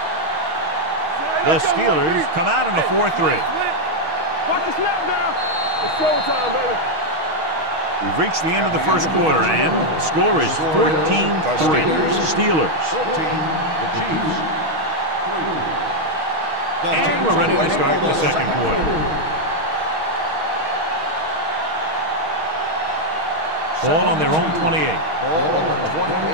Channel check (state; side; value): late; left; 6.3 ms